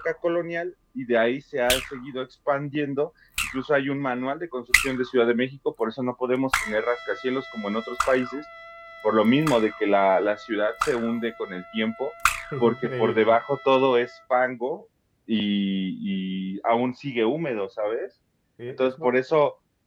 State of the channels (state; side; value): identical; both; correlation 1.00